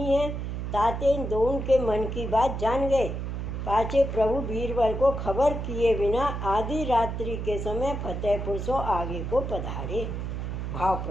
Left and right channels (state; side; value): noise; right; hum, 4 dB below the sound